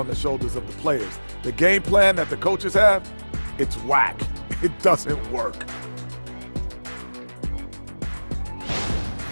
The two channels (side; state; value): both; inverted; correlation -1.00